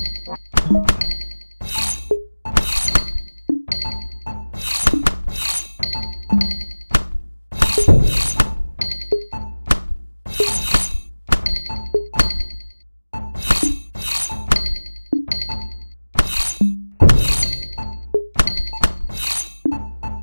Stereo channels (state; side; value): inverted; both; correlation -1.00